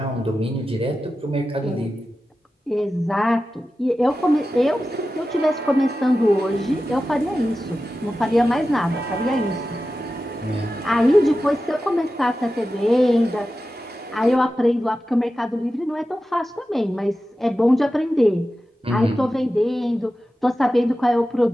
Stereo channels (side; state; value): both; normal; correlation 0.93